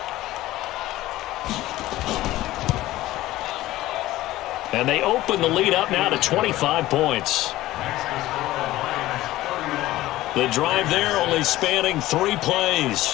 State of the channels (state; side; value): quieter; right; 16.2 dB